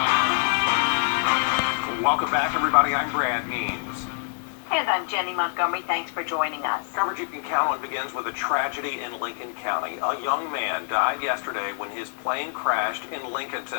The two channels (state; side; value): silent; right; digital silence